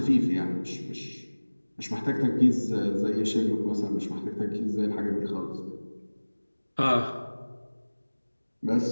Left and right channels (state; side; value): inverted; both; correlation -1.00